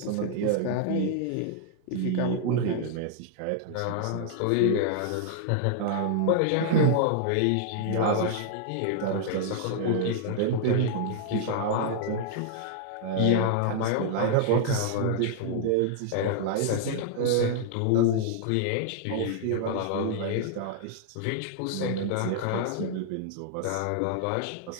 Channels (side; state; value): both; different; correlation -0.01